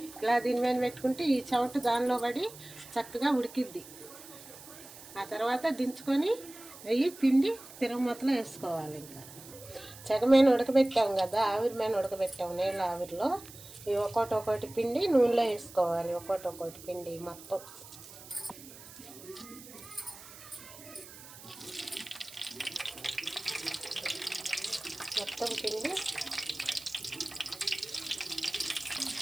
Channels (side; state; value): right; noise; hiss, 17 dB below the sound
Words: దీని మీద పెట్టుకుంటే ఈ చెమట దానిలో పడి చక్కగా ఉడికిద్ది. ఆ తర్వాత దించుకొని అవి పిండి తిరగమూతలో వేసుకోవాలి. ఇంకా చెగమైన ఉడకబెట్టాం కదా, ఆవిరి మీద ఉడకబెట్టాము నీళ్ళ ఆవిరిలో. ఇవి ఒక్కొక్కటి పిండి నూనెలో వేసుకోవాలి. ఒక్కొక్కటి పిండి మొత్తం పిండి